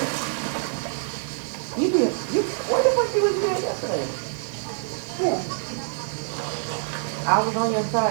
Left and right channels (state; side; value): silent; left; digital silence